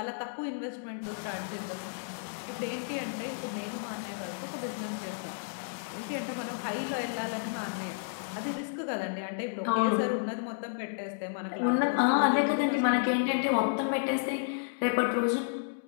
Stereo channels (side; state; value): right; silent; digital silence